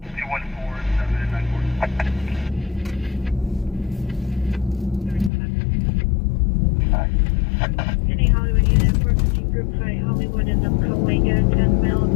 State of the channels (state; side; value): drops out; right; at 5.3 s